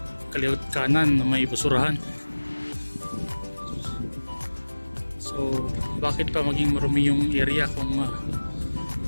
kaliwat kanan na may basurahan. So bakit pa maging marumi yung area kung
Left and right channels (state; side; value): inverted; both; correlation -1.00